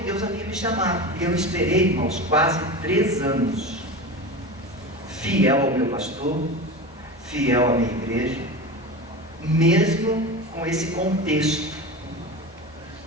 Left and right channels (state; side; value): normal; both; correlation 0.28